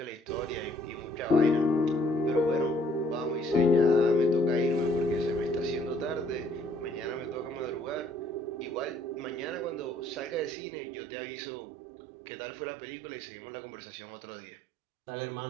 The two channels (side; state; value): left; drops out; at 10.6 s